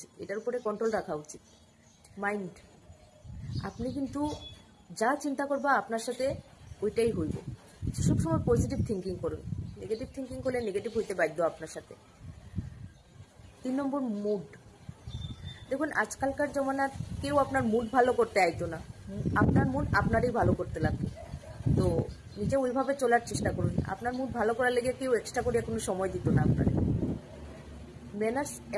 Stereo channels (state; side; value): identical; both; correlation 1.00